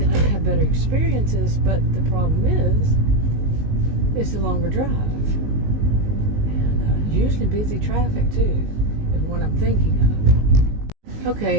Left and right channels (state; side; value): late; left; 19 ms